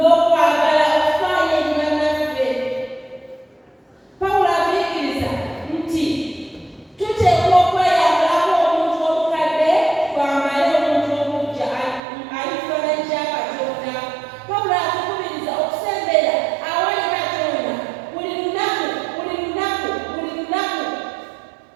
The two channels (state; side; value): drops out; left; at 12.0 s